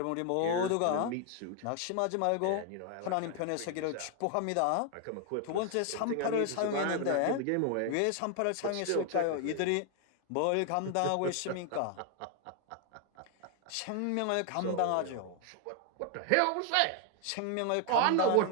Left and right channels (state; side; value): different; both; correlation 0.00